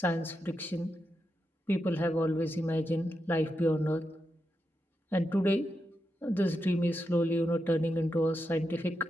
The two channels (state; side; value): normal; both; correlation 0.86